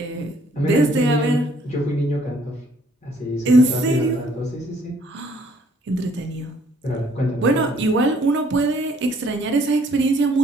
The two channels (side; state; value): both; normal; correlation 0.63